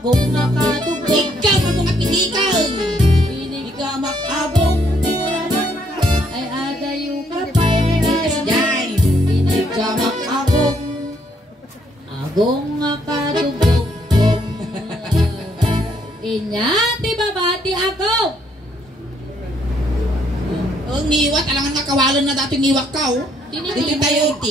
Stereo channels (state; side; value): normal; both; correlation 0.70